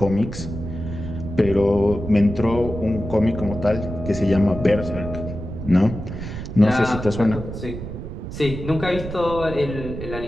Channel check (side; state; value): right; noise; rumble, 8 dB below the sound